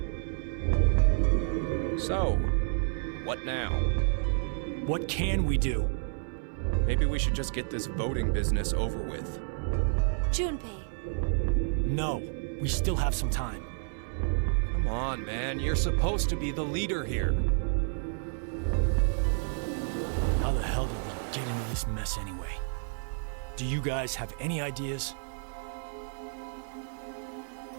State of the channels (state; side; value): silent; left; 58 dB below the other